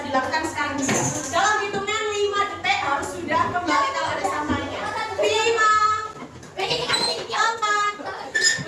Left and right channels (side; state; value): both; identical; correlation 1.00